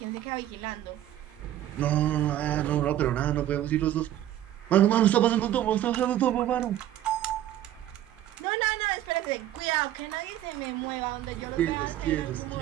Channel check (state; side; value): quieter; left; 12.6 dB